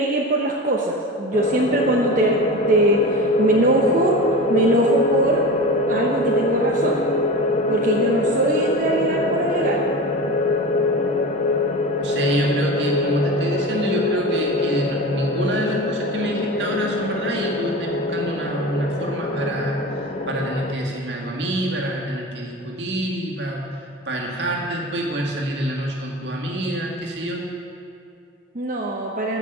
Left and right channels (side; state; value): both; normal; correlation 0.30